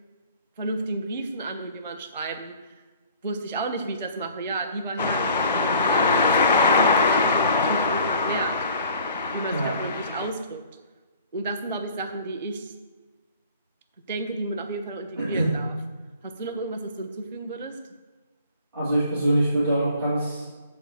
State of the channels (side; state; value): both; inverted; correlation -0.52